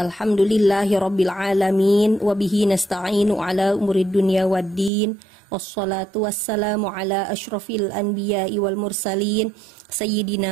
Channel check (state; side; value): drops out; left; at 4.9 s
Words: alamin wa bihi nasta'inu ala umurid dunya waddin. Wassalatu wassalamu ala asyrafil anbiya'i wal mursalin